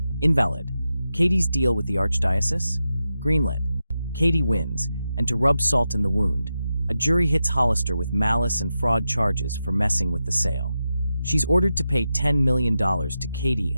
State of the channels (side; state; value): both; inverted; correlation -0.90